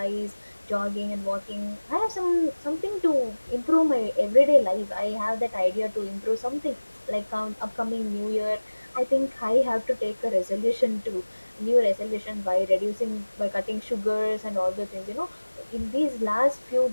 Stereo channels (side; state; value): both; inverted; correlation -1.00